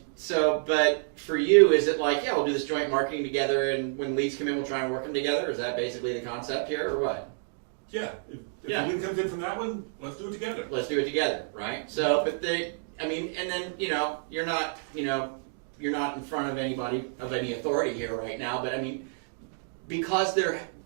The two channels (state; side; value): silent; left; digital silence